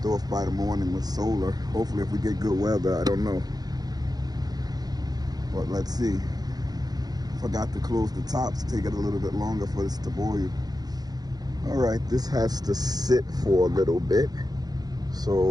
off by the morning with solar. Hopefully if we get good weather, I don't know. But let's see. Forgot to close the tops, take it a little bit longer for this to boil. All right, this has to sit for a little bit.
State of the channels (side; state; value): left; late; 0.19 ms